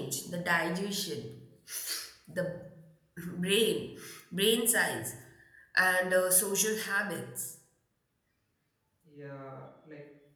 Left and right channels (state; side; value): identical; both; correlation 1.00